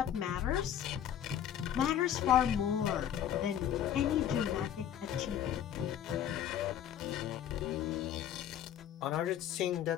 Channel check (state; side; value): quieter; right; 10.1 dB